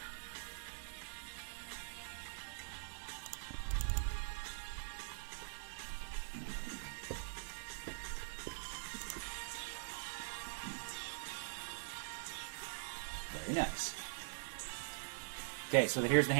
Very nice. Okay, so here's the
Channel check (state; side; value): silent; left; digital silence